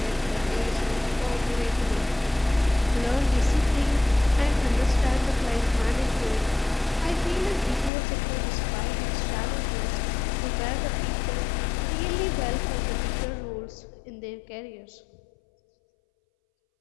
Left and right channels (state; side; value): drops out; right; at 7.9 s